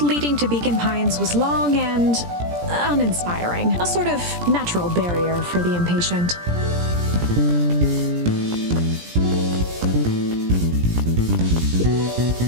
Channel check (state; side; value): late; left; 17 ms